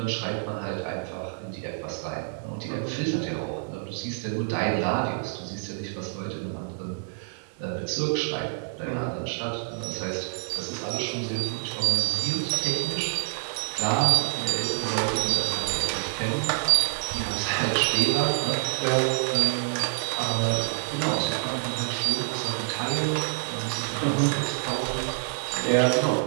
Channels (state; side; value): silent; left; digital silence